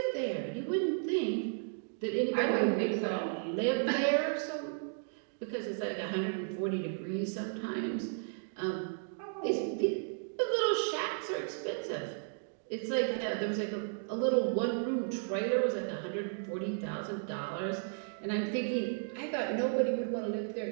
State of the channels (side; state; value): left; silent; digital silence